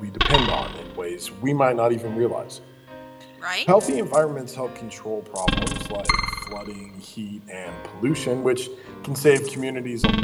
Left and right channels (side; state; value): both; identical; correlation 1.00